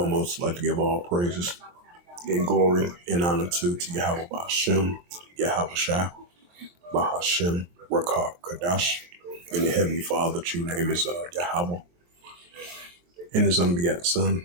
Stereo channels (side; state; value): left; late; 23 ms